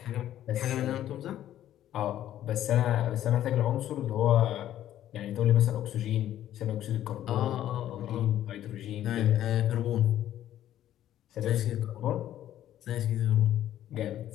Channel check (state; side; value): quieter; right; 12.1 dB